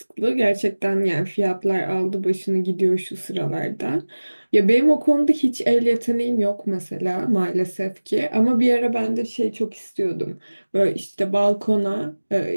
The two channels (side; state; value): both; inverted; correlation -1.00